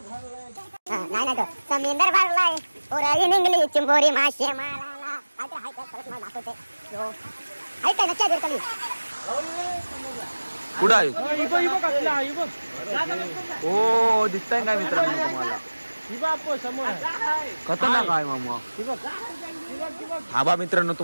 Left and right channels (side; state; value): both; inverted; correlation -1.00